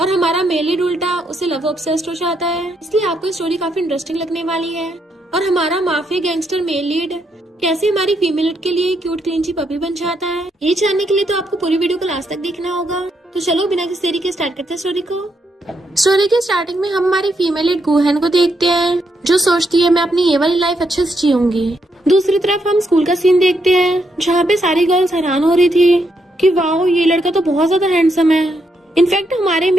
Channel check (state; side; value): normal; both; correlation 0.78